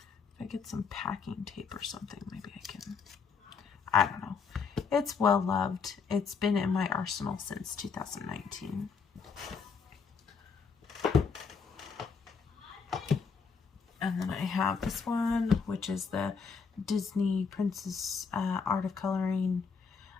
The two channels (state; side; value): quieter; right; 5.5 dB